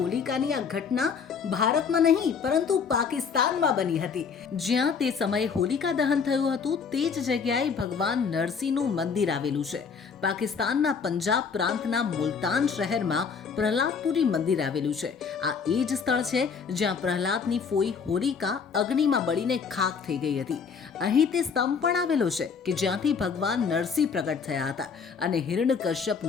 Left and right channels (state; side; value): quieter; right; 6.0 dB